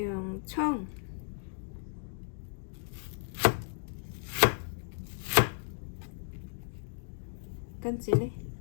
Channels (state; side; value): silent; right; digital silence